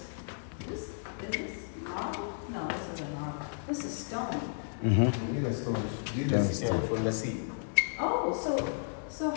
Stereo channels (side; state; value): right; silent; digital silence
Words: is this marble? No, this isn't marble. This is stone. Mm-hmm. This is for the sea. Oh, so